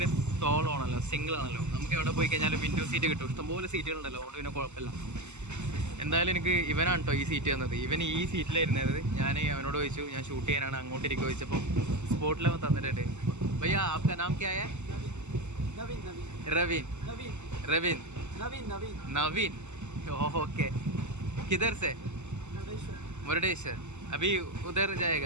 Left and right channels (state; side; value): late; left; 0.83 ms